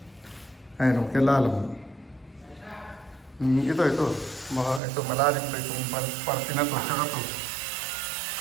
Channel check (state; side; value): drops out; left; at 4.8 s